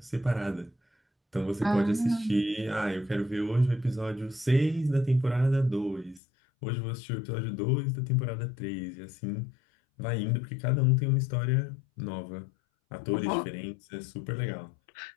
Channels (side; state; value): right; drops out; at 6.2 s